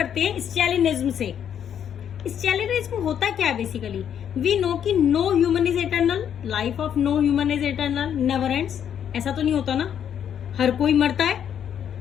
हैं स्टैलिनिज्म से. स्टैलिनिज्म होता क्या है बेसिकली. वी नो कि no human is eternal, life of no human is eternal, never ends. ऐसा तो नहीं होता ना, हर कोई मरता है,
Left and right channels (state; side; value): quieter; right; 9.0 dB